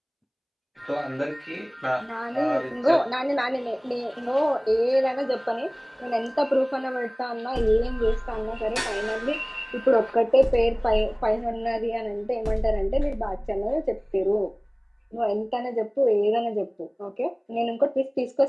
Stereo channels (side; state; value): both; identical; correlation 1.00